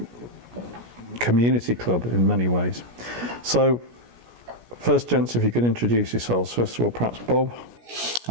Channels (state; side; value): late; left; 17 ms